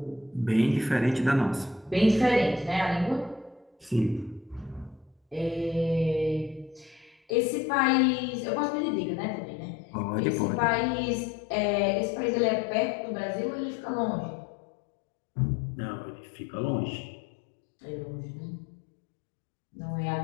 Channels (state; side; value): drops out; right; at 7.3 s